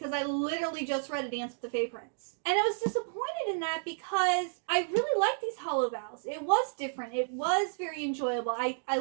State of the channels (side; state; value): left; silent; digital silence